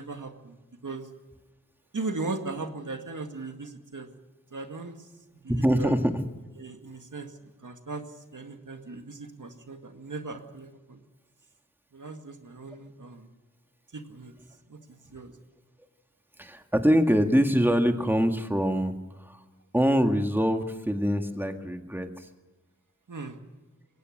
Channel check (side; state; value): both; normal; correlation 0.87